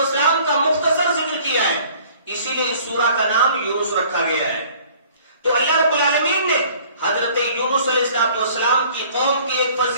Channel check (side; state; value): both; inverted; correlation -0.53